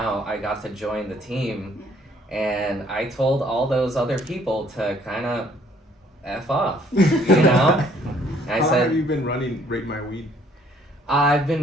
I got to join the team. And I told all those other people to kind of F off, you know? How long have you been running Rate My Weed? I've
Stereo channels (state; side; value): normal; both; correlation 0.62